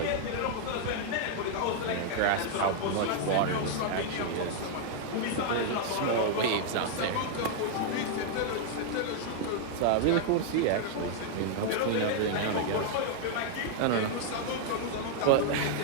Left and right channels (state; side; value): different; both; correlation -0.01